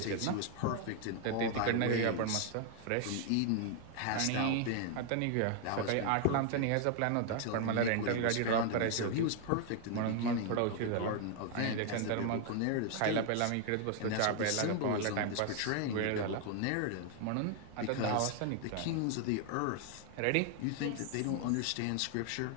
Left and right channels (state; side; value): different; both; correlation 0.00